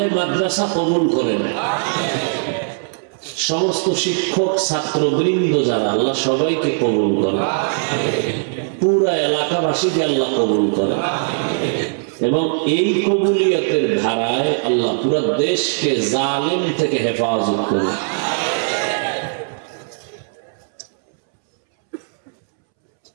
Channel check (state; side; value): silent; left; 66 dB below the other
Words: মাদ্রাসা কবুল করেন। সমস্ত শিক্ষক, ছাত্রবৃন্দ যারা, আল্লাহ সবাইকে কবুল করেন। পুরা এলাকাবাসীকে আল্লাহ কবুল করেন এবং এই কবুলিয়তের ধারায় আল্লাহ পুরা দেশকে জালিম থেকে হেফাজত করেন।